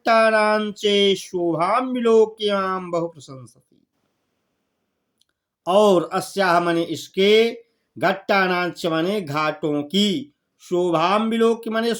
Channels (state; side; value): identical; both; correlation 1.00